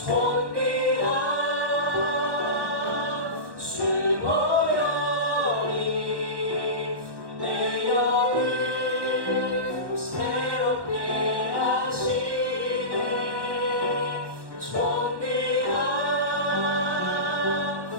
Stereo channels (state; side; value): late; left; 1.2 ms